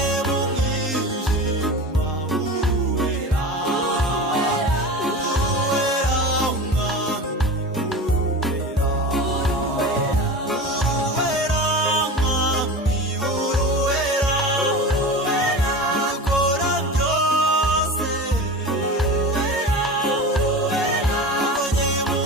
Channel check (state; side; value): normal; both; correlation 0.30